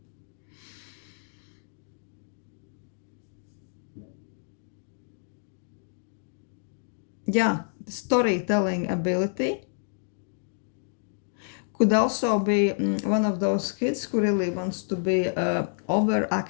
Yeah, the storytelling ability. Could also be one of those kids who really wants to be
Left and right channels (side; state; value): right; silent; digital silence